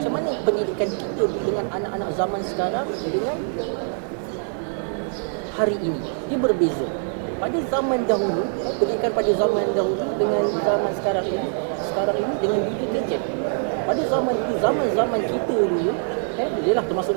mana pendidikan kita dengan anak-anak zaman sekarang dengan hari ini, dia berbeza. Pada zaman dahulu, pendidikan pada zaman dahulu dengan zaman sekarang ini dengan dunia gadget. Pada zaman dulu, zaman kita dulu, jelah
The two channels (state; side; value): silent; left; 57 dB below the other